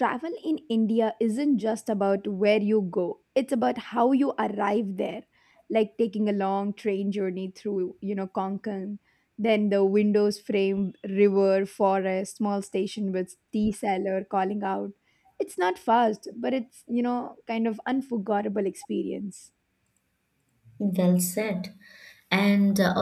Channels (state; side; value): identical; both; correlation 1.00